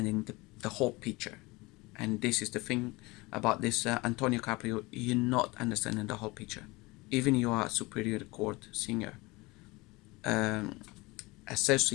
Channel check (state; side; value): quieter; right; 23.4 dB